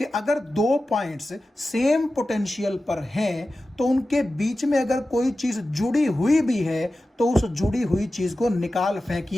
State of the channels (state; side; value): normal; both; correlation 0.94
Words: अगर 2 पॉइंट्स सेम पोटेंशियल पर हैं, तो उनके बीच में अगर कोई चीज जुड़ी हुई भी है, तो उस जुड़ी हुई चीज को निकाल